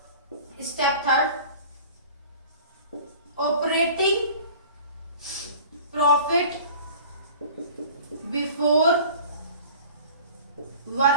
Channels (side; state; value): both; inverted; correlation -0.43